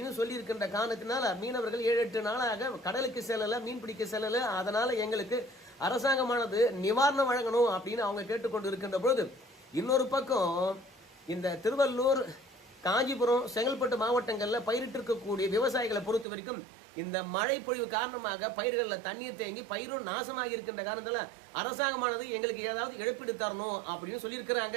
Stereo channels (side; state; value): left; drops out; at 16.2 s